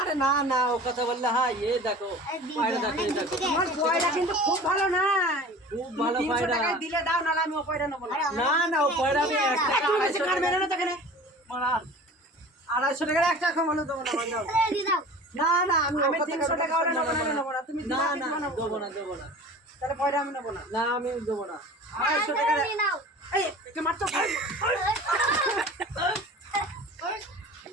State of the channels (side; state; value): both; normal; correlation 0.40